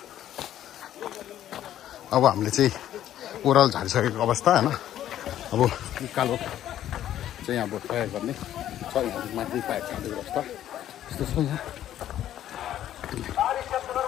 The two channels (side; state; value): right; quieter; 11.8 dB